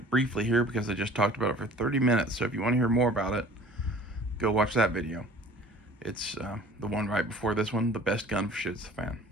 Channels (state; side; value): normal; both; correlation 0.48